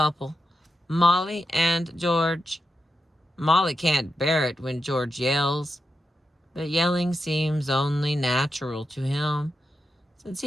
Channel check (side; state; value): both; normal; correlation 0.88